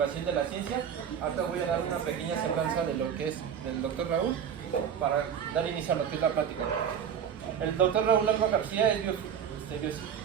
de la ciencia. Ahora voy a dar una pequeña semblanza de lo que es del doctor Raúl para dar inicio a lo que es la plática. El doctor Raúl Alba García es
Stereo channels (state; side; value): quieter; left; 8.1 dB